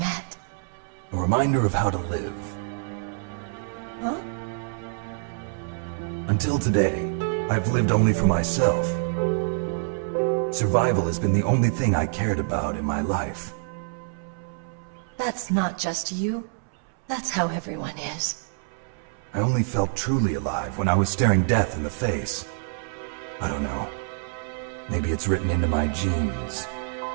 A reminder of how to live. Huh? Until today, I've lived only for myself. Survival has been the only thing I cared about in my life. That's not just you. That's how everyone is. I only felt truly alive when I was staring death in the face. I don't know. Maybe it's written into my genes.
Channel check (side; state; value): left; silent; 61 dB below the other